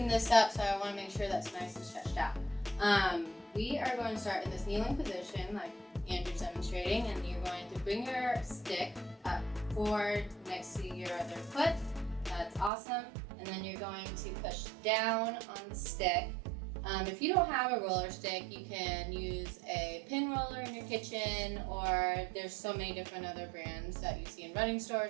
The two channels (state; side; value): drops out; left; at 12.7 s